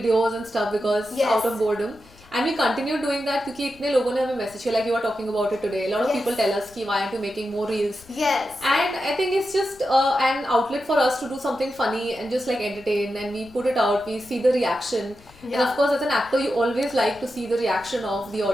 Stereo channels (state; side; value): noise; left; rumble, 25 dB below the sound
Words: and stuff because out of boredom. And we continue doing that because इतने लोगों ने हमें message किया, like you are talking about it today. A lot of people tell us कि why aren't you making more reels? And I think it's just an outlet for us to do something funny and just like entertain, and we put it out, we see the reaction. And of course as an actor you always like to see the reaction of the